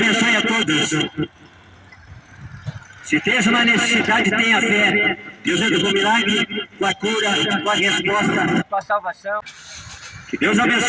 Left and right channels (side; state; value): both; identical; correlation 1.00